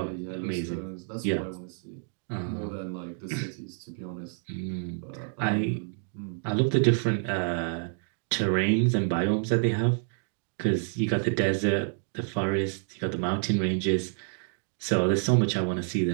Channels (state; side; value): silent; left; 59 dB below the other